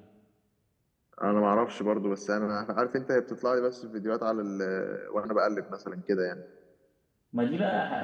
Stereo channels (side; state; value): both; identical; correlation 1.00